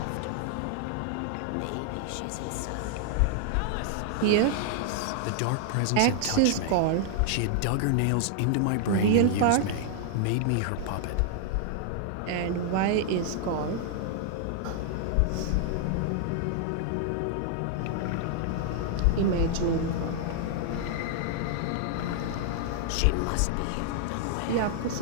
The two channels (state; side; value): different; both; correlation 0.00